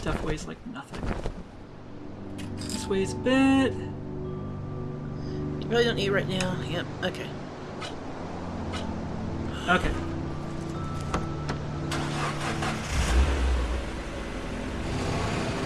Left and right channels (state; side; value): identical; both; correlation 1.00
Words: weighs like nothing. This weighs a bit. You probably don't need it right now. Yep, okay. Okay.